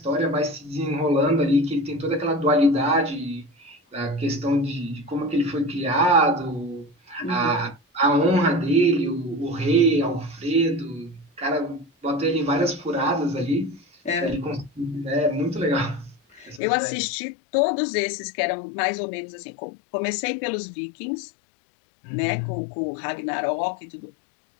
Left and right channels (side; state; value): right; drops out; at 16.6 s